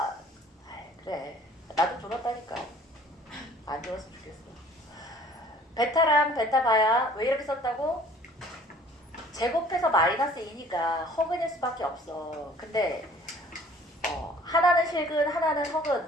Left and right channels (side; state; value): both; normal; correlation 0.53